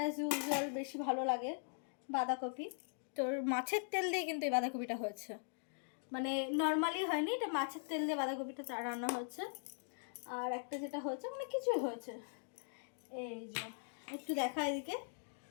ইউজুয়াল বেশি ভালো লাগে বাঁধাকপি, তো মাছের তেল দিয়ে কিন্তু এই বাঁধাকপিটা হয়েছে, মানে নর্মালি হয়নি, এটা মাছের তেল দিয়ে বাঁধাকপিটা রান্না হয়েছে। আর একটা যেটা হয়েছে মানে কিছুই হয়েছে, এই যে একটু দেখা এদিকে,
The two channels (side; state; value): right; silent; digital silence